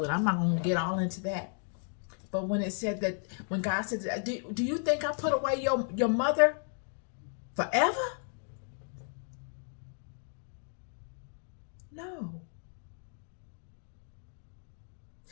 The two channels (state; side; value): silent; right; 55 dB below the other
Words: it. I'm not going to get all into that. But when it said that, when God said, do you think I put away your mother forever? No.